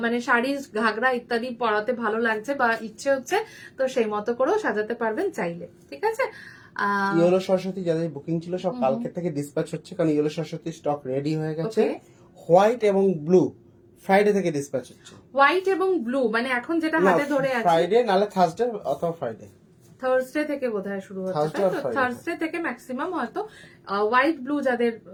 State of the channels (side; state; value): both; identical; correlation 1.00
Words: মানে শাড়ি ঘাগরা ইত্যাদি পরাতে ভালো লাগছে বা ইচ্ছে হচ্ছে, তো সেই মতো করেও সাজাতে পারবেন চাইলে। ঠিক আছে, ইয়েলো সরস্বতী যাদের বুকিং ছিল সব কালকে থেকে ডিসপ্যাচ হচ্ছে, কারণ ইয়েলো সরস্বতী স্টক রেডি হয়ে গেছে। হোয়াইট এবং ব্লু ফ্রাইডে থেকে ডিসপ্যাচ হচ্ছে। হোয়াইট এবং ব্লু মানে এখন যেটা হাতে ধরে আছে ফ্রাইডে নালে থার্সডে অথবা ফ্রাইডে, থার্সডে থেকে বোধহয় শুরু হচ্ছে, Thursday or Friday? থার্সডে থেকে ম্যাক্সিমাম হয়তো। হোয়াইট ব্লু যাদের